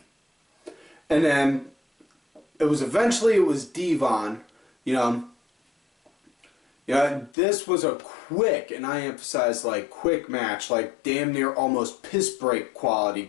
then it was Devon, you know. Yeah, this was a quick, and I emphasize like quick match, like damn near almost piss break quality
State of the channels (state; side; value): drops out; right; at 7.3 s